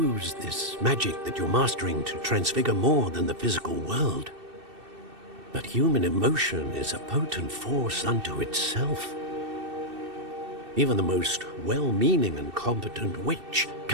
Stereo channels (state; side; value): late; left; 2.6 ms